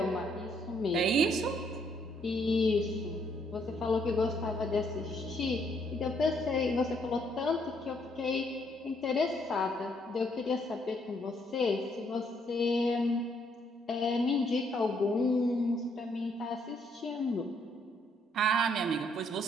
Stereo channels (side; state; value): both; normal; correlation 0.70